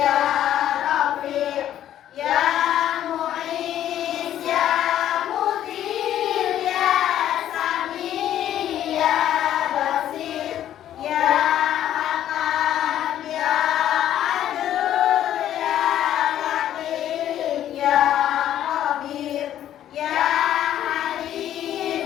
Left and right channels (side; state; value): right; quieter; 11.5 dB